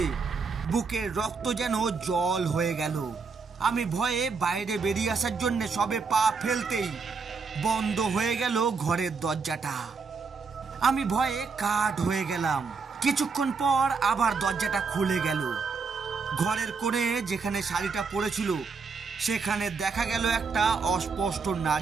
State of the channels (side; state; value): left; quieter; 4.9 dB